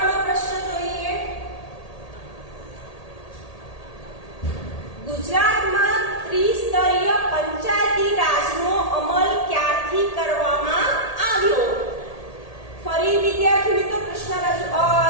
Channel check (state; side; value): late; right; 1.8 ms